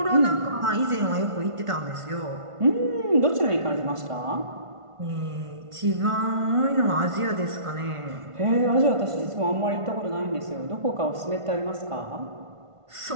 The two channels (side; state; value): left; late; 1.5 ms